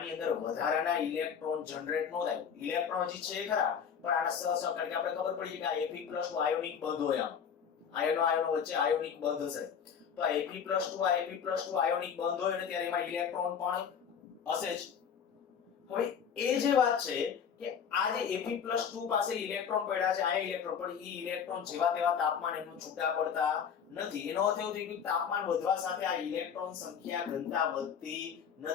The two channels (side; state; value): right; quieter; 7.4 dB